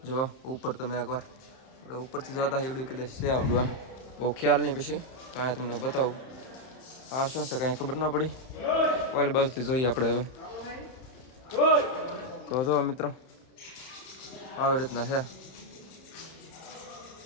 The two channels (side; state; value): right; late; 31 ms